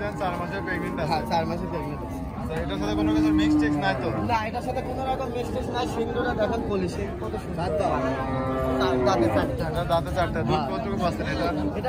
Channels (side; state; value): both; identical; correlation 1.00